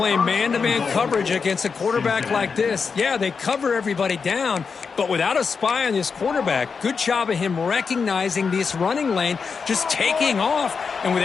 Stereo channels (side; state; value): right; quieter; 5.5 dB